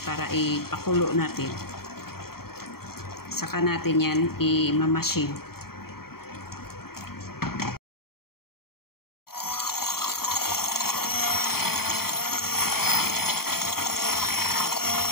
para ipakulo natin. Saka natin yan i-mamasin.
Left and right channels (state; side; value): late; right; 0.94 ms